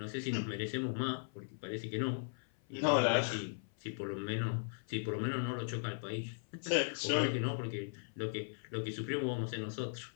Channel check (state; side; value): silent; right; 53 dB below the other